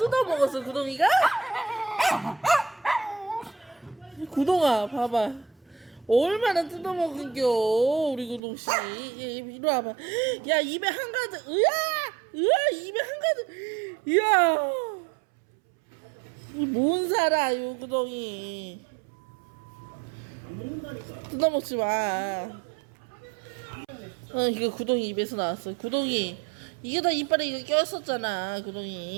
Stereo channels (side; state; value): left; drops out; at 8.4 s